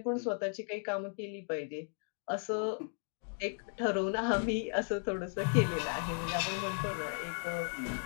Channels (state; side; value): silent; right; 54 dB below the other